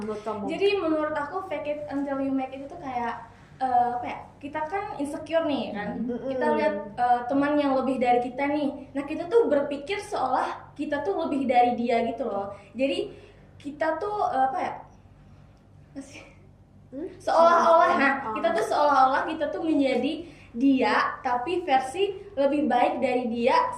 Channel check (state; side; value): identical; both; correlation 1.00